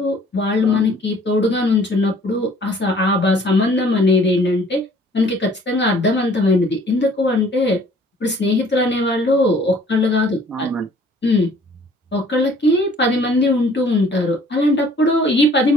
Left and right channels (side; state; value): both; normal; correlation 0.55